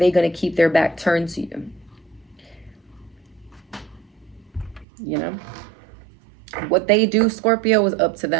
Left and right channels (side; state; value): left; drops out; at 4.9 s